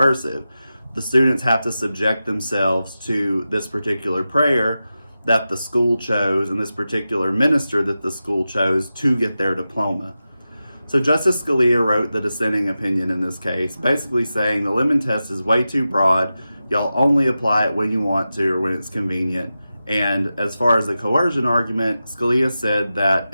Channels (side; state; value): both; inverted; correlation -0.92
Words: The students have to subject themselves to this particular prayer that the school chose and this particular minister that the school chose to get their diploma. So Justice Scalia wrote the dissenting opinion in this case, basically saying the Lemon test is way too broad. Y'all only apply it when you want to or when it's convenient. And as far as the coercion argument, Scalia said that